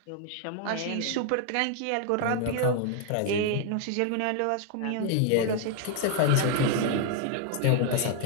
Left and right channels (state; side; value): different; both; correlation 0.00